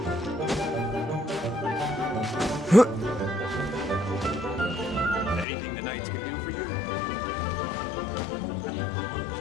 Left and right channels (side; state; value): right; drops out; at 5.5 s